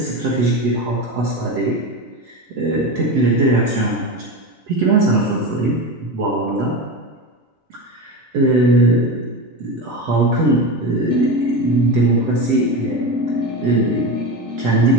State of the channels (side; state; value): both; normal; correlation 0.22